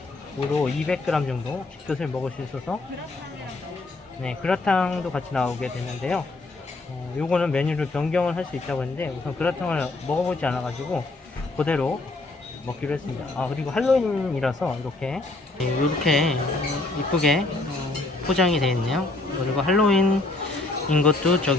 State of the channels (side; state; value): right; quieter; 3.1 dB